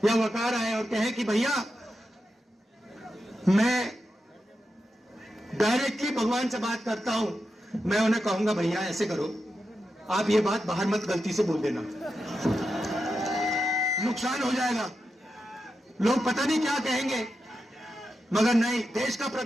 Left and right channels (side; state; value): both; normal; correlation 0.88